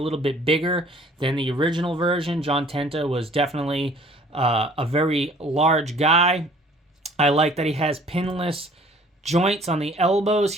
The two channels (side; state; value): both; normal; correlation 0.54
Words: little bit bigger than the original version. John Tenta was definitely a very large guy. I like that he has pinless joints on the elbows